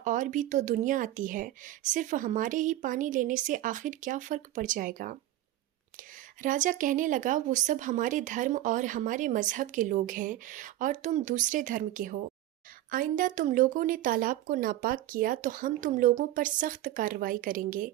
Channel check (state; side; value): quieter; left; 14.4 dB